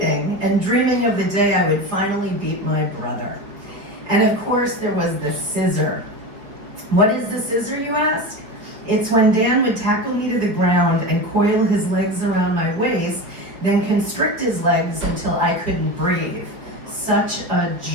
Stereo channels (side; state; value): left; late; 5.3 ms